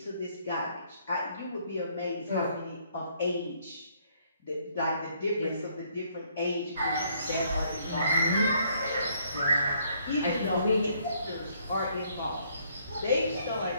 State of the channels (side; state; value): both; inverted; correlation -0.67